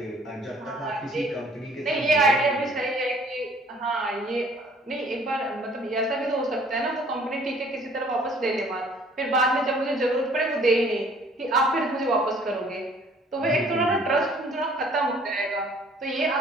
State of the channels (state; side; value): normal; both; correlation 0.56